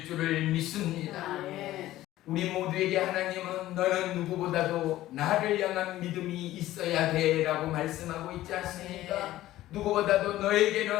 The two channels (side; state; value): right; quieter; 15.1 dB